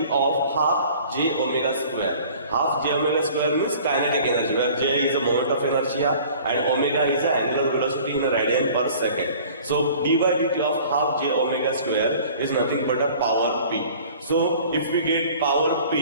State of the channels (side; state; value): both; inverted; correlation -0.48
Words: of half j omega square. Half j omega square means kinetic energy, where j is the moment of inertia and omega is the angular velocity in a radian per second. So d by dt of half j omega square is nothing but a power P. So if we get power